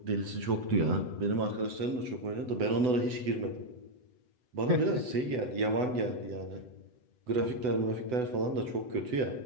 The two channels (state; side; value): late; left; 7.9 ms